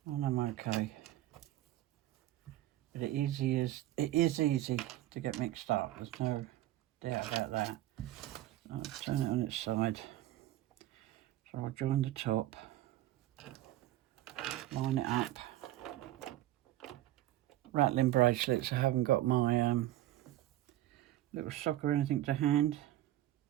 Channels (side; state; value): left; quieter; 14.7 dB